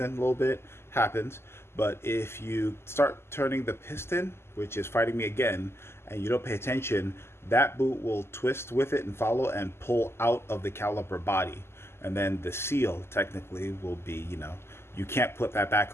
a little bit. Happens. But if you start turning the piston, which is fighting me again, and you don't pay attention, that boot will twist with it and follow and pull out of the caliper body. And then the seal technically will be, you know, you can't put that back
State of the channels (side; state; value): right; late; 0.12 ms